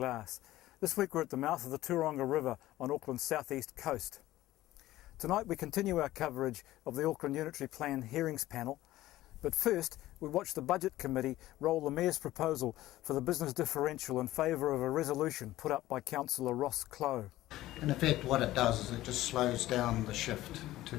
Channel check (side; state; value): right; quieter; 15.6 dB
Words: This week we're at the mouth of the Tauranga River on Auckland's southeast coast. Tonight we continue our coverage of the Auckland Unitary Plan hearings panel, but first we watch the Budget Committee roll the Mayor's proposal for the business differential in favour of a resolution put up by Councillor Ross Clough. In effect, what it does is it just slows down the shift